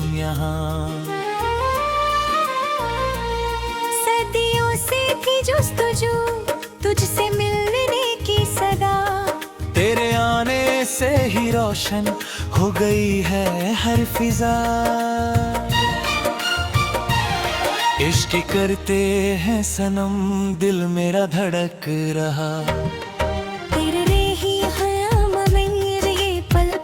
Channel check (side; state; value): both; identical; correlation 1.00